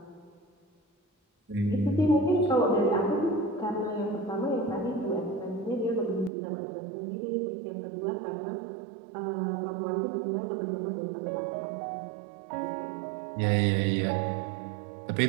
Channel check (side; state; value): left; drops out; at 6.3 s